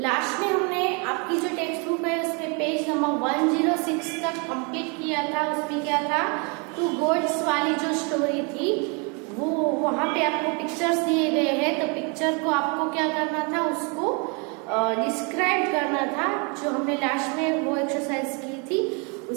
Last में हमने आपकी जो टेक्स्ट बुक है उसमें पेज नंबर 106 तक कंप्लीट किया था. उसमें क्या था, टू गोड्स वाली जो स्टोरी थी वो वहां पे आपको पिक्चर्स दिए गए हैं. तो पिक्चर को आपको क्या करना था, उसको डिस्क्राइब करना था, जो हमने लास्ट में वो एक्सरसाइज की थी.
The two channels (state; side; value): quieter; left; 33.7 dB